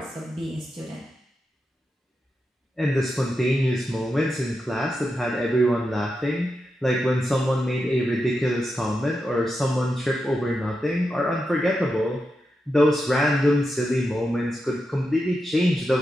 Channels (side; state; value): both; normal; correlation 0.88